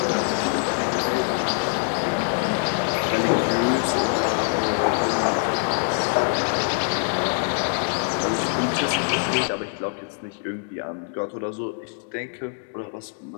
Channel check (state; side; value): silent; right; 63 dB below the other